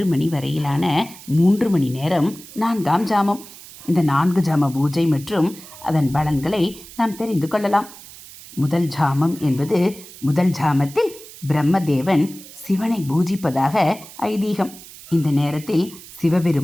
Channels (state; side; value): noise; right; hiss, 18 dB below the sound